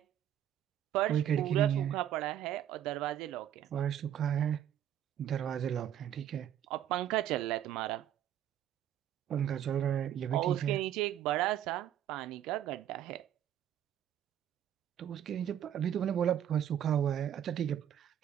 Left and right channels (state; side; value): quieter; left; 10.5 dB